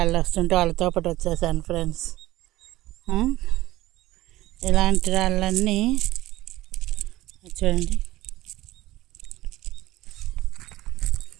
వస్తుంటే వాళ్ళతో పాటు వచ్చేసాను ఫ్రెండ్స్. ఇలాంటి రాళ్ళన్నీ చూడండి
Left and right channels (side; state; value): left; quieter; 16.8 dB